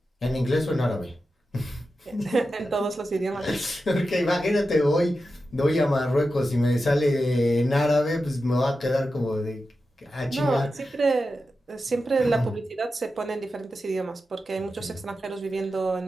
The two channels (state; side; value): normal; both; correlation 0.91